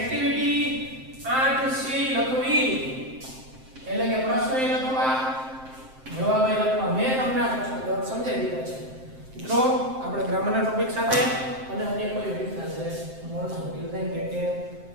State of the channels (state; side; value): late; left; 7.6 ms